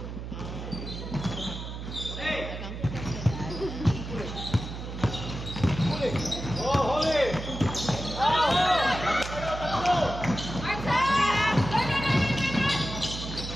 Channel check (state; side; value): noise; right; hum, 8 dB below the sound